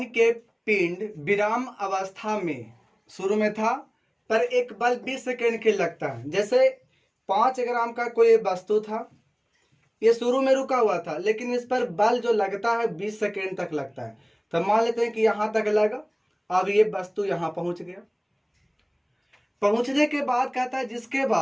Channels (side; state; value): both; identical; correlation 1.00